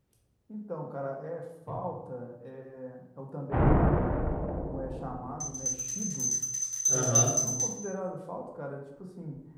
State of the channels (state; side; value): identical; both; correlation 1.00